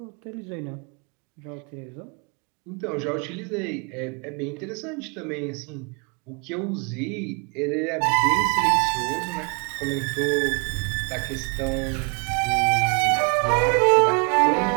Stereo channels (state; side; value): quieter; left; 36.4 dB